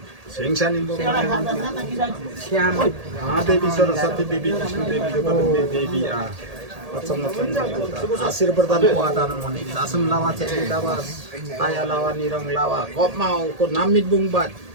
सिंहसानी Shyam देवी सरस्वती देवी विष्णु देवी देवी आशीर्वाद आदान मने दासम लावा चेक लावा आया लावा निरंग लावा कपमा को नामित बुंगबात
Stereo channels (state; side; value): late; left; 1.8 ms